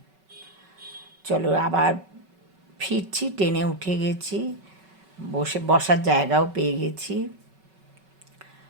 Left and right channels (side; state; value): left; late; 5.3 ms